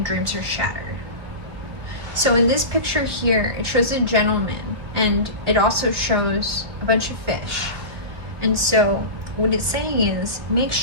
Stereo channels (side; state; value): left; late; 2.7 ms